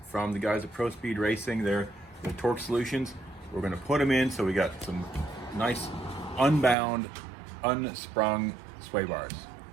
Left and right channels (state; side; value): drops out; left; at 6.8 s